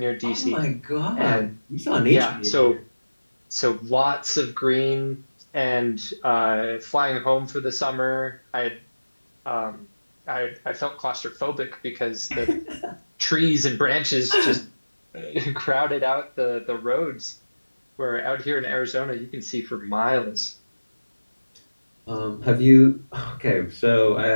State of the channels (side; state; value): both; inverted; correlation -1.00